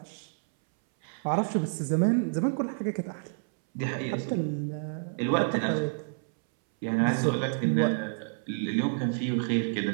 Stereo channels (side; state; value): left; silent; 59 dB below the other